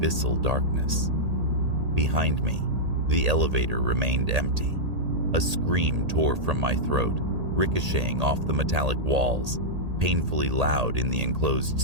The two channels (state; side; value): late; left; 1.8 ms